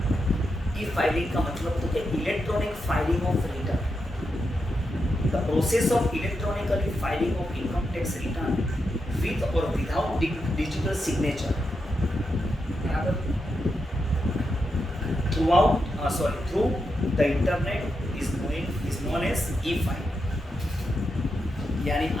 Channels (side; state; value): both; normal; correlation 0.86